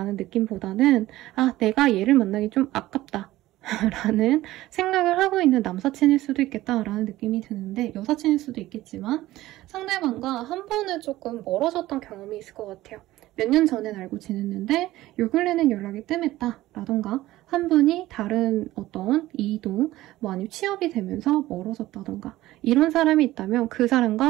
느낌보다는 내가 얘를 만나기 좀 아깝다 라는 생각을 하고 있는 남사친일 수도 있겠다라는 느낌이 드는데 여사친일 수도 있겠지만 상대방과 한 번은 조금 멀어졌던 경험이 있을 것 같아요. 몇 년 전엔 알고 지냈는데 요 근래는 연락이 뜸했다 라던가 한 분이 다른 어떤 이동, 아니면 취업이 되면서 멀어졌다던가 이런 사람이 있다면 그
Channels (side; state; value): left; quieter; 16.3 dB